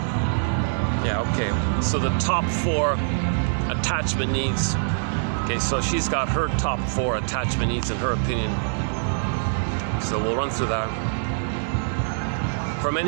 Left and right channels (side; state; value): left; silent; digital silence